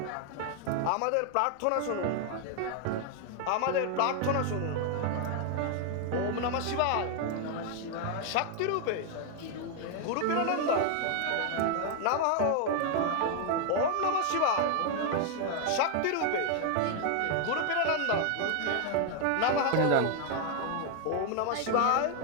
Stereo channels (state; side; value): different; both; correlation 0.00